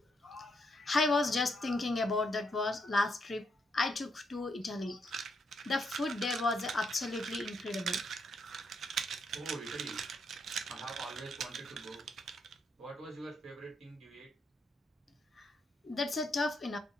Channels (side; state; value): both; normal; correlation 0.77